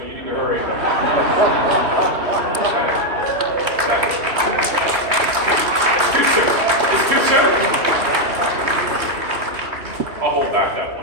you need to hurry. It's too soon. I'll hold back that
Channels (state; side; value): late; left; 3.1 ms